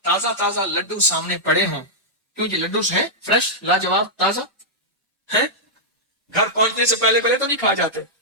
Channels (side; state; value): both; normal; correlation -0.09